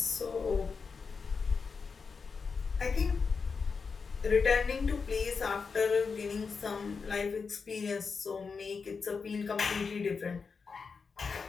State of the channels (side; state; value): right; quieter; 5.2 dB